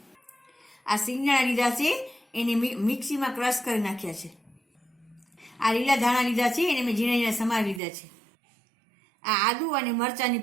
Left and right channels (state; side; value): drops out; left; at 7.8 s